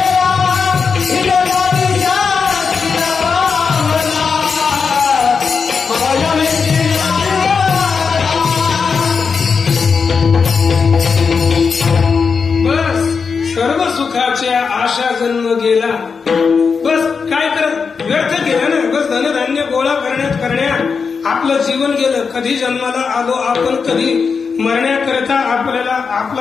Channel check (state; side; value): quieter; right; 5.5 dB